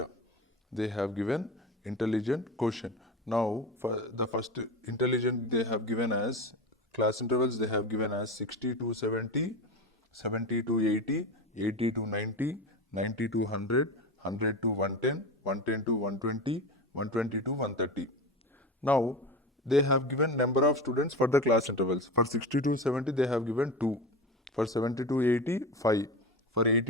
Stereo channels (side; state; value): both; normal; correlation 0.25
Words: They have given intelligent quotient. Now, for the first intelligent, they have given as class intervals, they have given as 60 to 70, 70 to 80, 80 to 90, 90 to 100, 100 to 110, 110 to 120, 120 to 130. Now, they have given number of students for the class intervals. For 60 to 70, they have given 2. For 70 to 80, 5. For